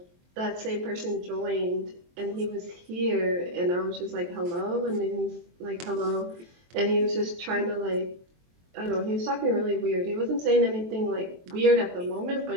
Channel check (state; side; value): late; left; 23 ms